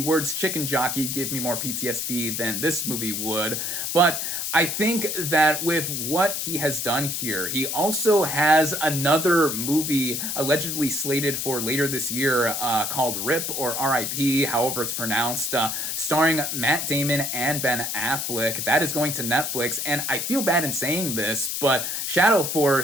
chicken jockey give me more PTSD than this movie would, but I think that with what he has done here, he also has another movie allegedly slated for later this year called RIP or RIP, however it's pronounced, starring Matt Damon and Ben Affleck. That is going to Netflix, and I feel bad in saying this, but Shadow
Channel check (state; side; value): noise; left; hiss, 2 dB below the sound